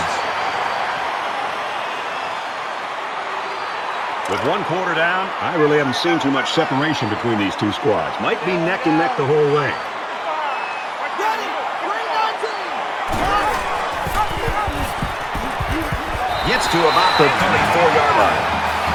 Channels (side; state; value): both; identical; correlation 1.00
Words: With 1 quarter down, I really haven't seen too much separation between these two squads. Might be neck and neck the whole way. Gets to about the 34-yard line.